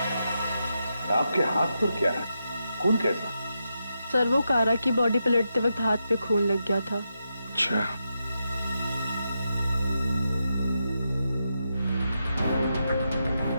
आपके हाथ पर क्या है? खून कैसा? सर वो कारा की बॉडी पलटते वक्त हाथ पे खून लग गया था। अच्छा।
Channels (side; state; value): both; inverted; correlation -0.86